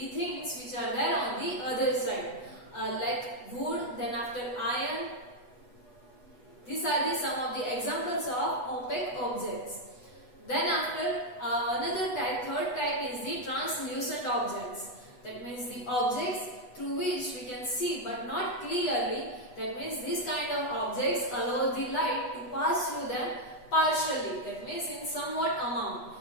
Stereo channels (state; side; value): late; right; 8.2 ms